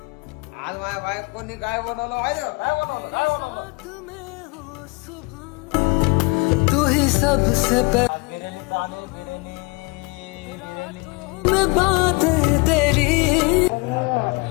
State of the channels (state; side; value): quieter; right; 28.1 dB